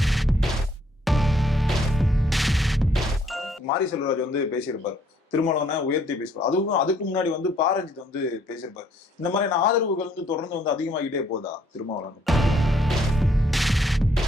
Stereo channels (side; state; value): both; normal; correlation 0.66